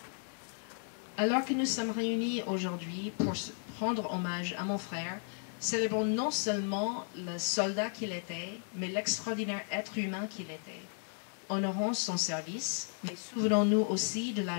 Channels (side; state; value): right; silent; 55 dB below the other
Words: Alors que nous sommes réunis aujourd'hui pour rendre hommage à mon frère, célébrons non seulement le soldat qu'il était, mais l'extraordinaire être humain qu'il était. Honorons son service, mais souvenons-nous aussi de